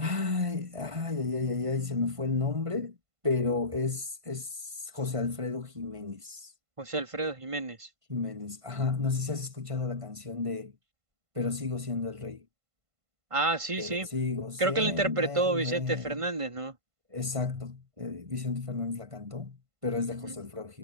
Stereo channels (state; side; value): late; left; 1.5 ms